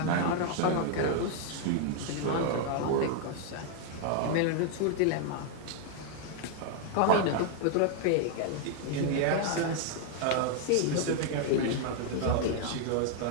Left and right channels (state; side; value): different; both; correlation 0.00